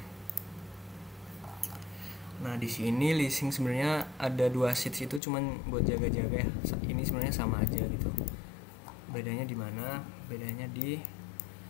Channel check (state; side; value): drops out; right; at 5.2 s